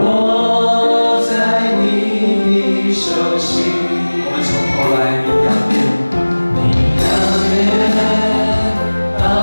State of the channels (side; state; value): both; inverted; correlation -1.00